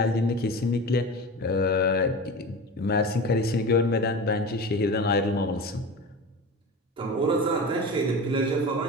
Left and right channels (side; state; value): both; normal; correlation 0.30